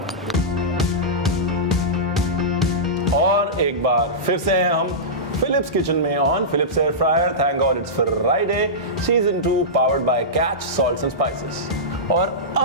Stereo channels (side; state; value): both; normal; correlation -0.15